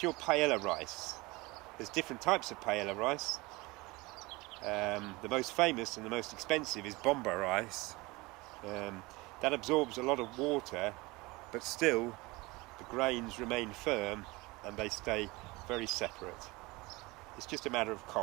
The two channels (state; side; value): quieter; left; 23.1 dB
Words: your paella rice. There's different types of paella rice. The most famous and the most expensive is bomba rice. That absorbs a lot of water, but still the grains remain firm and they stay very separate. It's just a matter of